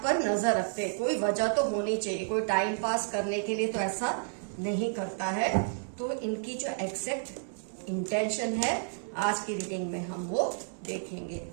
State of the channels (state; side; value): silent; left; 57 dB below the other